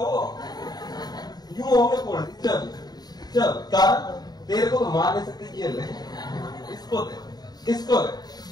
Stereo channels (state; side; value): late; right; 0.19 ms